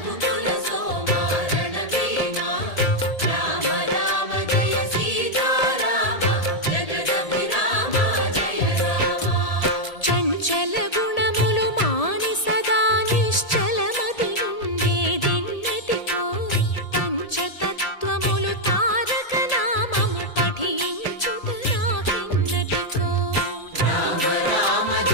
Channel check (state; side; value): late; right; 1.8 ms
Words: సోమ రణభీమ రామ రామ జయ సీతారామ జగదభిరామ జయ రామ చంచల గుణములు మాని సదా నిశ్చలమతి నుండేదెన్నటికో పంచతత్వములు తారక నామము పఠించుట నాకెన్నటికో రామ రామ